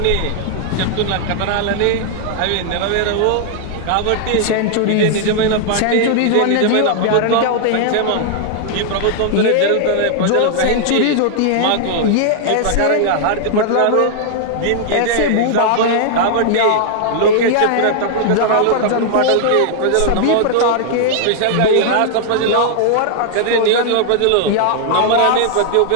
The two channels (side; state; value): both; different; correlation -0.01